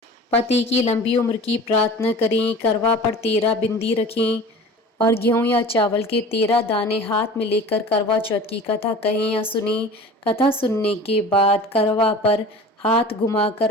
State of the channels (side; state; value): both; normal; correlation 0.40